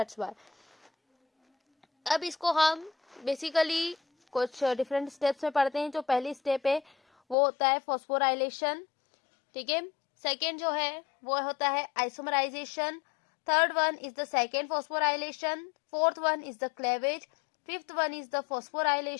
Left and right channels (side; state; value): right; drops out; at 7.4 s